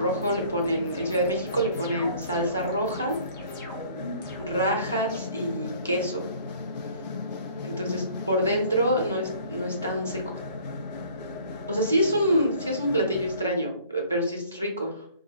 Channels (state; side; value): inverted; both; correlation -0.53